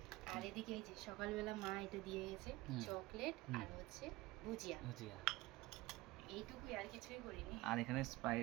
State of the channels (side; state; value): left; quieter; 19.7 dB